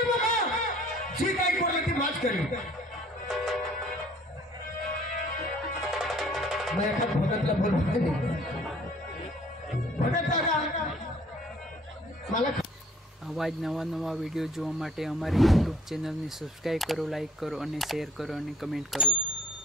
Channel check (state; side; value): normal; both; correlation 0.55